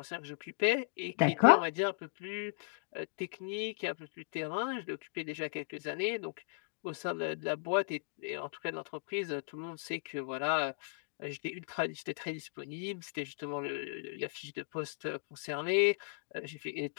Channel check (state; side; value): silent; right; digital silence